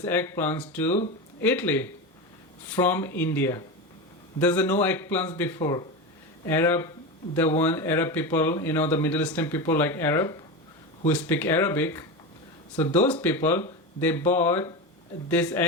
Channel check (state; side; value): normal; both; correlation 0.21